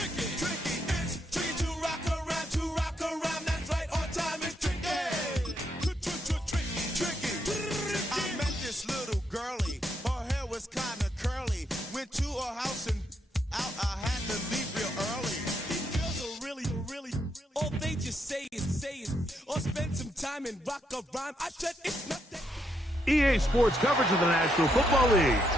like a rhyme. I said it's not that. EA Sports coverage of the National Football League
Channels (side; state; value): both; normal; correlation 0.77